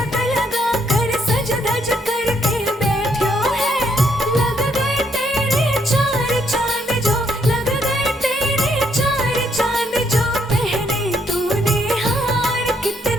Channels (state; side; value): normal; both; correlation 0.72